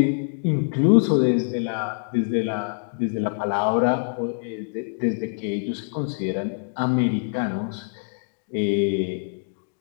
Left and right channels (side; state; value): right; silent; digital silence